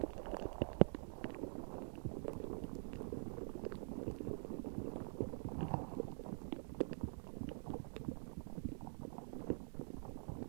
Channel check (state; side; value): silent; left; digital silence